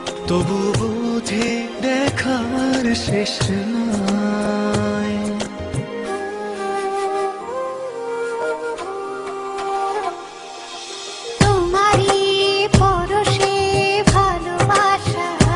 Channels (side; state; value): both; identical; correlation 1.00